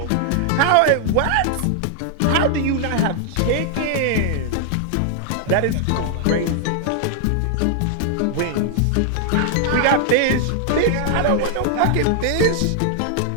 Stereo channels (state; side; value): different; both; correlation -0.01